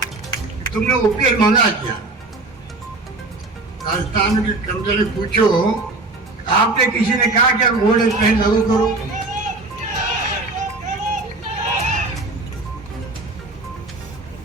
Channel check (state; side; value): quieter; left; 3.2 dB